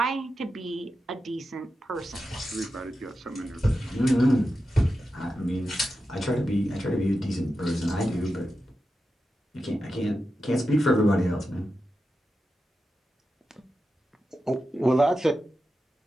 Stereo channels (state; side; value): normal; both; correlation 0.90